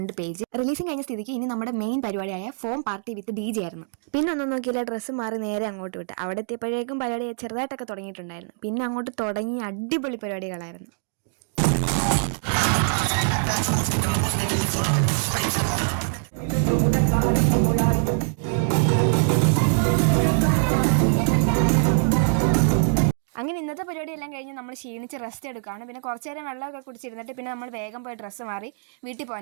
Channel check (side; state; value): left; silent; 62 dB below the other